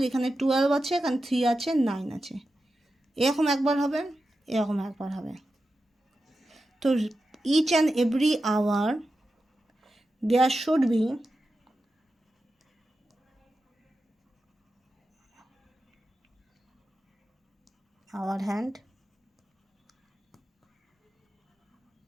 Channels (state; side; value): normal; both; correlation 0.91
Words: এখানে 12 আছে, এখানে 3 আছে, 9 আছে, এরকম একবার হবে, এরকম একবার হবে। তো each and every hour there should be our hand